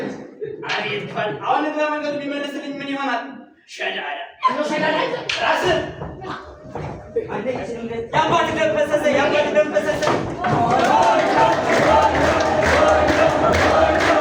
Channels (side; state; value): both; identical; correlation 1.00